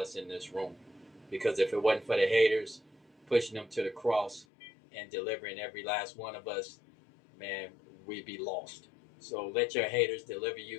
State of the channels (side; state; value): right; drops out; at 4.5 s